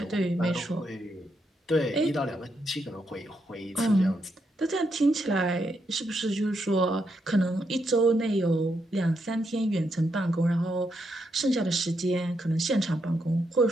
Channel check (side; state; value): both; normal; correlation 0.80